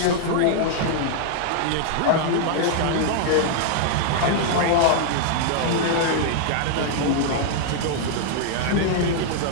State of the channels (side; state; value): both; different; correlation -0.01